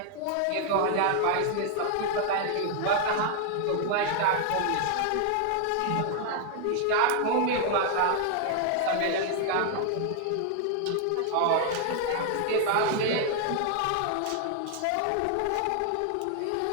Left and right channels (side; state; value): both; different; correlation 0.00